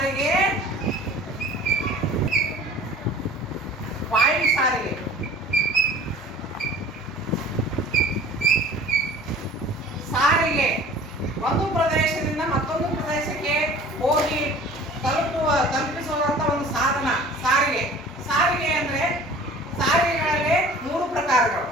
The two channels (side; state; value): both; normal; correlation 0.45